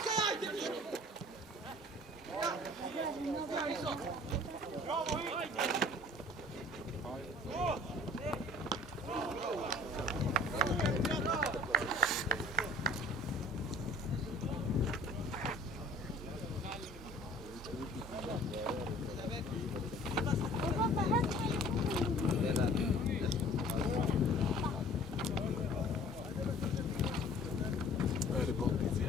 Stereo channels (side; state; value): both; normal; correlation 0.49